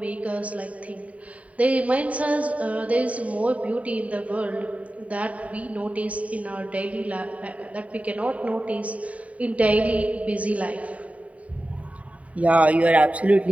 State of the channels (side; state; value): left; late; 0.068 ms